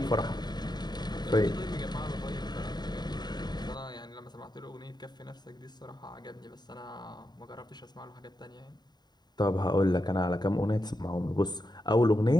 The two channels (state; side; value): late; right; 0.20 ms